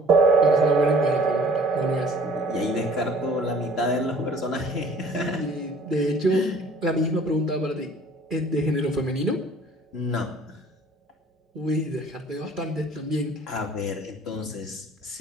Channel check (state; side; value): normal; both; correlation 0.52